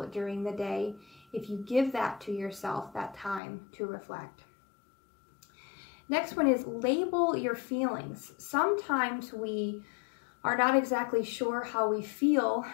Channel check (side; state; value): right; drops out; at 3.4 s